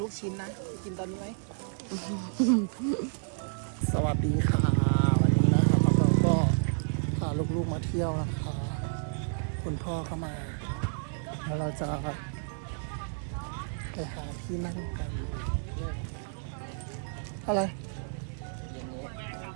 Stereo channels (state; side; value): silent; left; 57 dB below the other